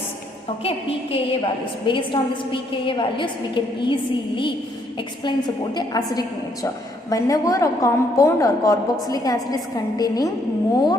Okay, pKa values. Based on this pKa values, we can easily explain about the acidic nature. Whenever a compound or carboxylic acid is containing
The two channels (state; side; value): normal; both; correlation 0.70